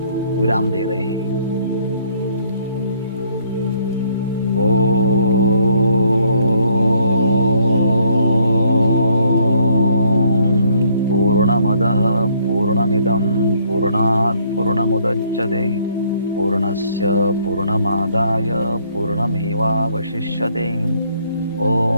विराम दे रहे हैं। पूर्णमदः पूर्णमिदं पूर्णात् पूर्णमुदच्यते पूर्णस्य पूर्णमादाय पूर्णमेवावशिष्यते।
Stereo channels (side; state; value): both; inverted; correlation -0.65